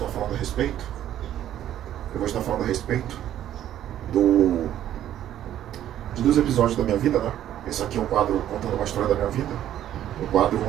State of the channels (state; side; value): quieter; left; 11.7 dB